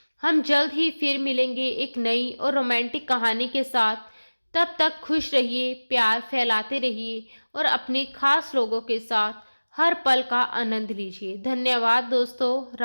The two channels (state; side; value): inverted; both; correlation -1.00